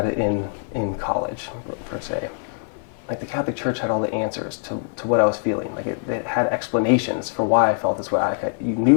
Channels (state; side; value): silent; right; 56 dB below the other